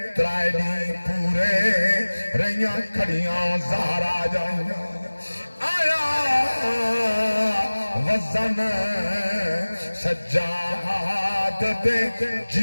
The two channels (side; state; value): both; inverted; correlation -1.00